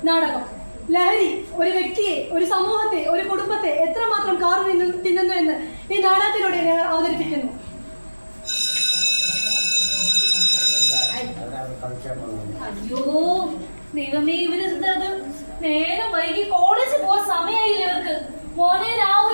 നാടകം ലഹരി ഒരു വ്യക്തിയെ, ഒരു സമൂഹത്തെ, ഒരു കുടുംബത്തെ എത്രമാത്രം കാർ തിന്നുന്നു എന്ന് ഈ നാടകത്തിലൂടെ ഞങ്ങൾ അവതരിപ്പിക്കുന്നു. അയ്യോ ദൈവമേ, ഇവര് നേരം വൈകി കോളേജിൽ പോവാൻ സമയമായില്ലേ ഇവർക്ക്. മോനെ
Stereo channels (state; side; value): inverted; both; correlation -1.00